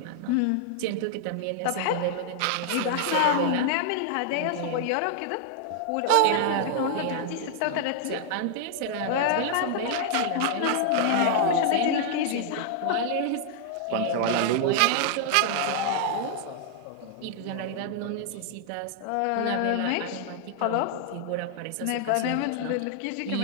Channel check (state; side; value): different; both; correlation 0.00